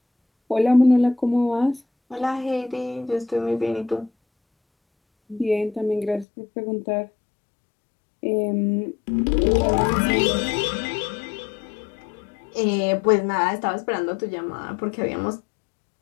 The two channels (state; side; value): drops out; right; at 6.2 s